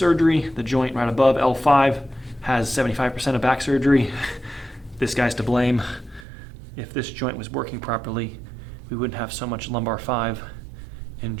The joint right above L5 has 75% of back surgery. This guy's to blame. If this joint was working properly, we wouldn't have so much lumbar 5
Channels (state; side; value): drops out; left; at 6.2 s